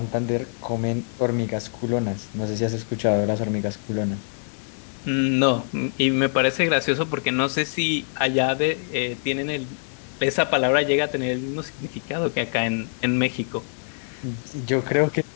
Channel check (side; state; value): right; silent; digital silence